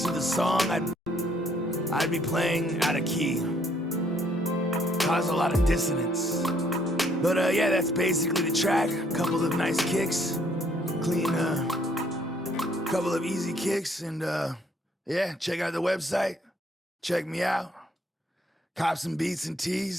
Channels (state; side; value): normal; both; correlation 0.66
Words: of the song, I'd be playing out of key. Cause a lot of dissonance. But yeah, that's basically the track. A couple of nice kicks, clean, couple of easy kicks, and yeah, check out the website. Check me out. Cop some beats and